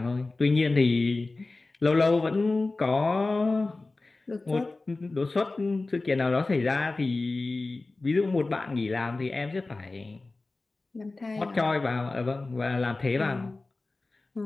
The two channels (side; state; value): right; quieter; 3.3 dB